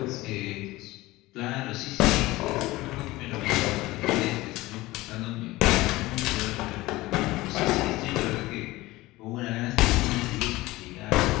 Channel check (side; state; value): right; quieter; 19.1 dB